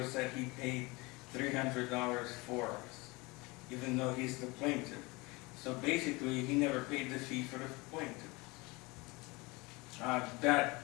said he paid $300 for us, even though he's the plaintiff. So basically, he never paid the fee for the plaintiff.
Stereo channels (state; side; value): quieter; right; 24.7 dB